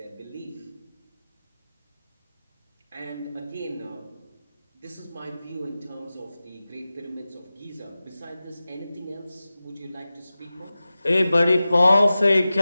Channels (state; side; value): inverted; both; correlation -0.96